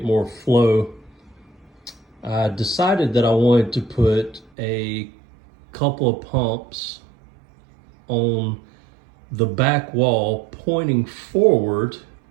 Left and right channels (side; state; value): left; drops out; at 4.5 s